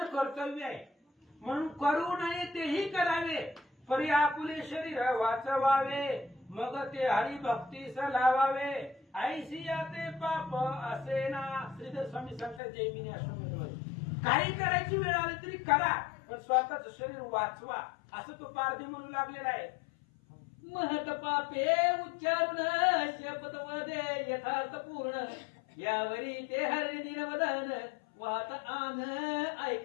कर्तव्य आहे, म्हणून करू नये तेही करावे. परी आपुले शरीर वाचवावे मग ते हरिभक्तीस लावावे. ऐसिया ते पाप असे ना. श्रीधर स्वामी सांगतात जैमिनी आश्रम, काही करायची वेळ आली तरी करा पण स्वतःच शरीर वाचवा असं तो पारधी म्हणू लागलेला आहे. महत पापे उच्चारून शपथ वदे यथार्थ पूर्ण. यावरी ते हरिणी दिनवदन वाहत आन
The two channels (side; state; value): right; drops out; at 12.6 s